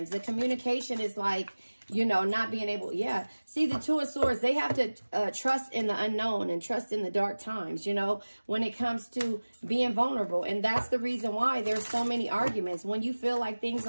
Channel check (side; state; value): both; inverted; correlation -1.00